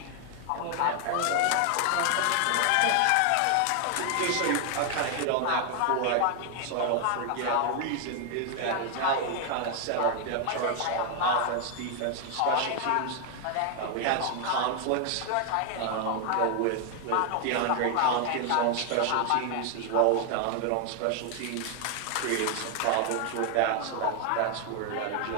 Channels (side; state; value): both; different; correlation 0.00